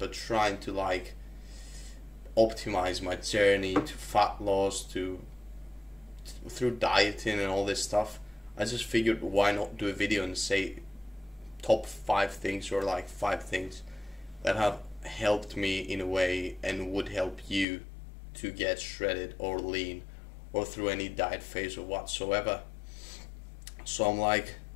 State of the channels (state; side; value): drops out; right; at 17.7 s